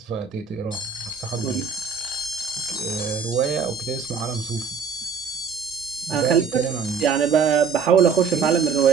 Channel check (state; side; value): quieter; left; 6.1 dB